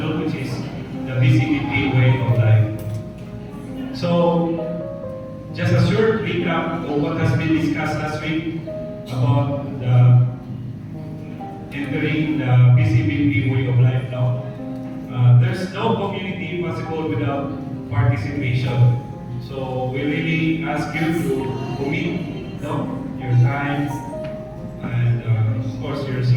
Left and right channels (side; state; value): both; identical; correlation 1.00